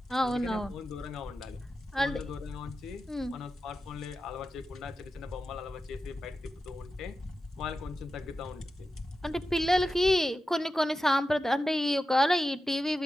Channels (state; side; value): normal; both; correlation 0.91